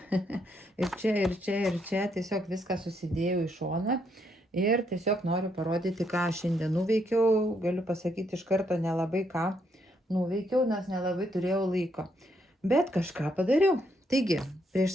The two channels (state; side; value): normal; both; correlation 0.75